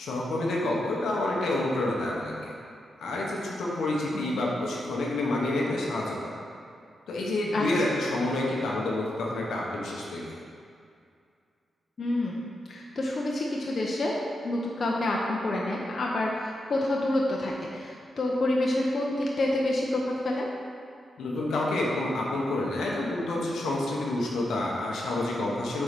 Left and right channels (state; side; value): normal; both; correlation 0.85